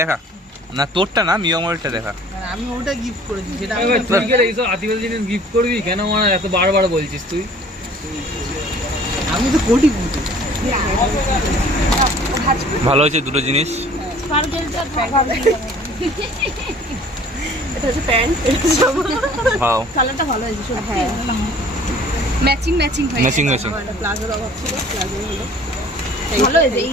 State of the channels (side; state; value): both; normal; correlation 0.51